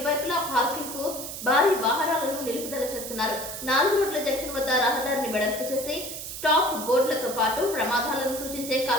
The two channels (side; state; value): right; noise; hiss, 8 dB below the sound